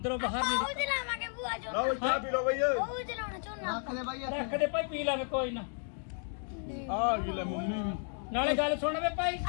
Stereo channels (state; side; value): silent; right; 56 dB below the other